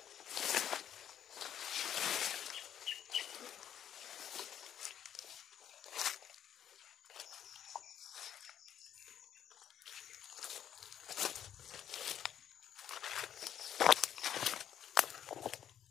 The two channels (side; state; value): right; quieter; 9.9 dB